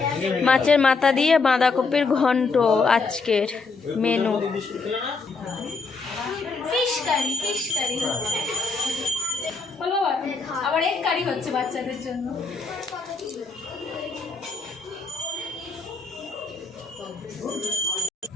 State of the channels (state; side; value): quieter; right; 4.2 dB